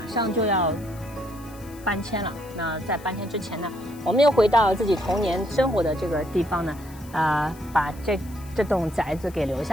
上就要搬迁了。那在搬迁之前呢，我们又回到自己童年生活的这个地方呢，把这栋宅子给留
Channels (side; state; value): left; noise; hiss, 22 dB below the sound